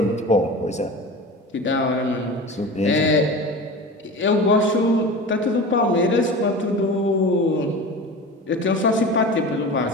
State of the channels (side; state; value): both; normal; correlation 0.32